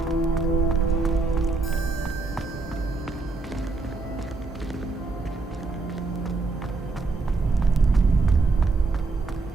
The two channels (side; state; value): left; quieter; 3.8 dB